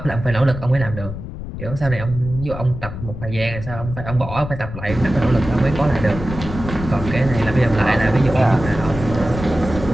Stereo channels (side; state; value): left; noise; rumble, 9 dB below the sound